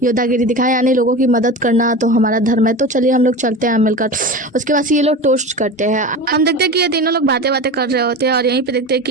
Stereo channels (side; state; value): both; normal; correlation 0.29